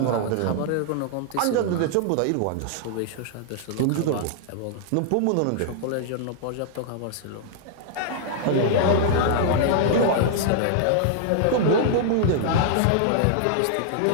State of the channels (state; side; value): different; both; correlation -0.01